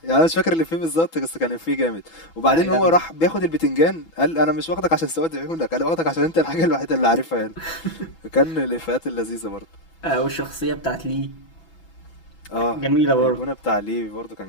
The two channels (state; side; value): late; right; 6.1 ms